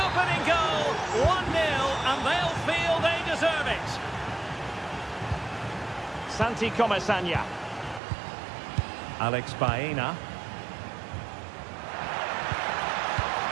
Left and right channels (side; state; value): left; drops out; at 8.0 s